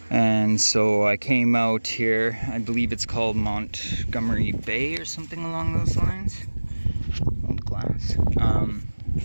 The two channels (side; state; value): both; inverted; correlation -1.00